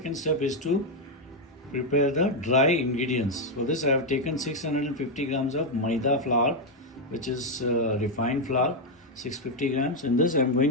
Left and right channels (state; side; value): normal; both; correlation 0.02